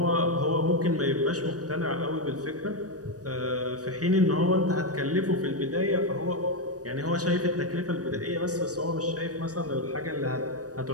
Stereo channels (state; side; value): late; left; 0.67 ms